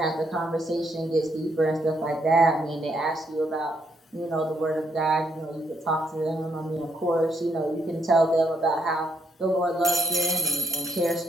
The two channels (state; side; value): normal; both; correlation 0.74